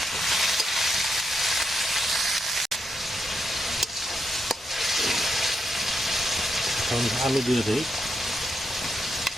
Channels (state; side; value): normal; both; correlation 0.82